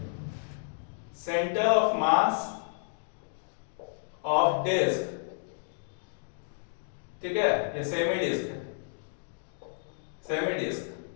centre of mass of disc, ठीक है, ये सेमी डिस्क है, semi disc.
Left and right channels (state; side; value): silent; right; digital silence